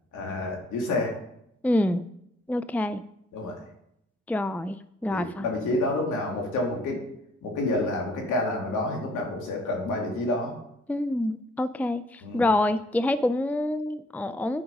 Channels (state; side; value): normal; both; correlation 0.61